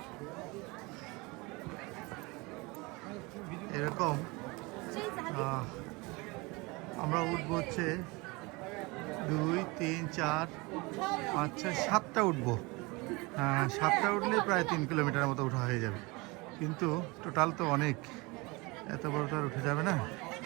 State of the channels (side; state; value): left; quieter; 25.4 dB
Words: এরকম আমরা উঠবো হচ্ছে 2, 3, 4, 5, 6, 7টা উঠবো। 7টা উঠলে প্রায় 3 কিলোমিটারের মতো উঠা হয়ে যাবে, কিন্তু টোটাল তো অনেক, এত বড় তো আর উঠে যাবে না,